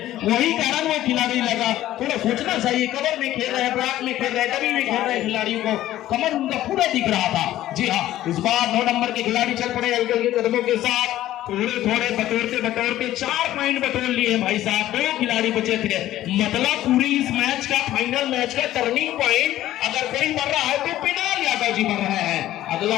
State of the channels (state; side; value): quieter; right; 14.0 dB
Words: वही कारण वो खिलाड़ी लगा। थोड़ा सोचना चाहिए, कमर में खेल रहे हैं, ब्राक में खेल रहे हैं, डमी में खेल रहे हैं, खिलाड़ियों को कमर उनका पूरा दिख रहा था। जी हाँ, इस बार 9 नंबर के खिलाड़ी चल पड़े हल्के के कदमों के साथ, थोड़े बटोरते 4 पॉइंट बटोर लिए भाई साहब, 2 खिलाड़ी बचे थे। मतलब पूरी इस मैच का, फाइनल मैच का टर्निंग पॉइंट अगर कोई बन रहा है तो पिनाल यादव जी बन रहे हैं। अगला